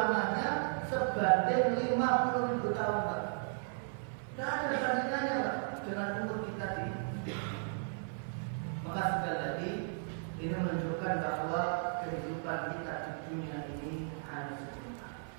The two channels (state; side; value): silent; left; 54 dB below the other